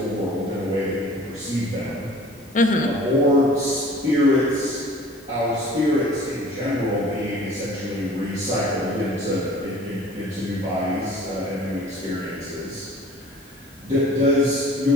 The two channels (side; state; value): both; normal; correlation 0.48